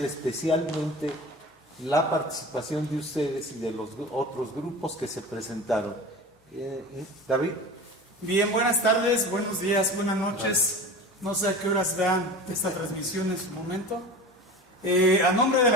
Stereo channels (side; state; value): both; normal; correlation 0.34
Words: especialmente la participación de ustedes y de los otros grupos que se presentaron. David. Bien, buenas tardes, buenos días, buenas noches. No sé a qué horas vean esta transmisión en su momento. A nombre de